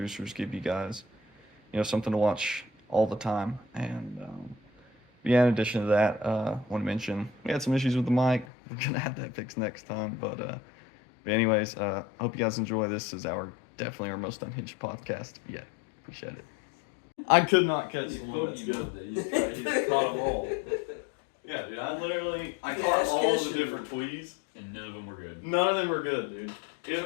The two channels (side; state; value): right; drops out; at 8.5 s